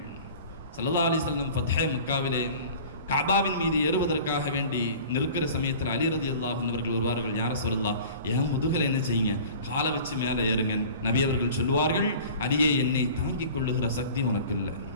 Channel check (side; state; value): both; inverted; correlation -0.43